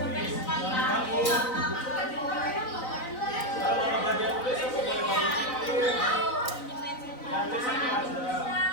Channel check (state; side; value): late; right; 4.0 ms